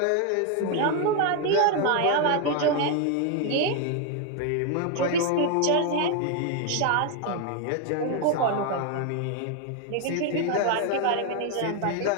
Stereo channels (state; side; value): different; both; correlation 0.01